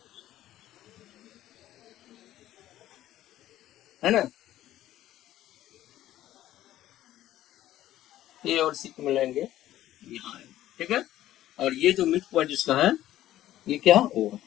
है ना। ए और सी को मिलाएंगे यहाँ है, ठीक है। और ये जो मिड पॉइंट इसका है, ये क्या है? ओ,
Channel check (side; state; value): right; quieter; 13.6 dB